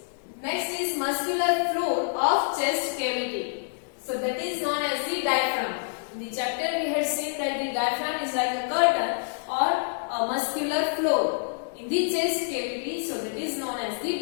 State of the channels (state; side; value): silent; right; digital silence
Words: Next is muscular floor of chest cavity. So that is known as the diaphragm. In the chapter we had seen that the diaphragm is like a curtain or a muscular floor in the chest cavity. So that is known as the